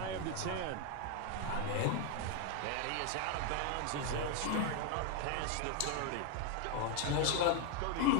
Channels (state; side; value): different; both; correlation 0.01